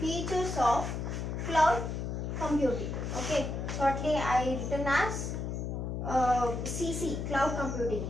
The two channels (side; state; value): left; noise; hum, 3 dB below the sound